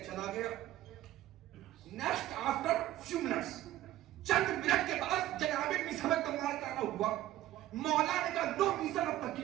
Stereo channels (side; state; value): left; quieter; 14.3 dB